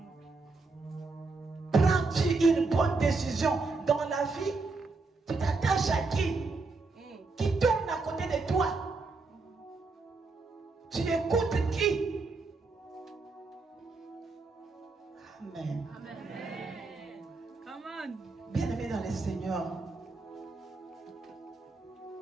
Prends-tu une bonne décision dans la vie? Tu t'attaches à qui? Qui tourne à côté de toi? Tu écoutes qui? Amen. Bien-aimé dans le Seigneur,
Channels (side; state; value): left; quieter; 3.8 dB